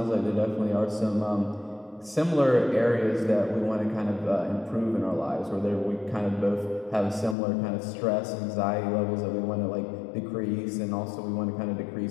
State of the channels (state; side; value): drops out; right; at 7.4 s